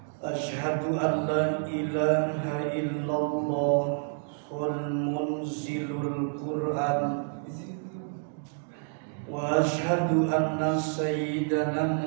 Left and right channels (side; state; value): left; silent; 59 dB below the other